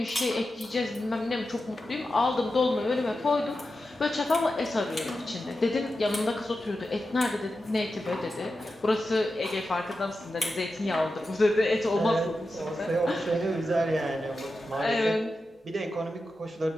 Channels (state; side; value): normal; both; correlation 0.91